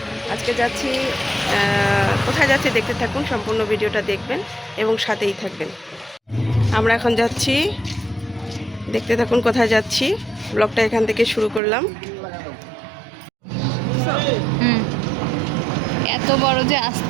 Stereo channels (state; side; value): drops out; left; at 11.6 s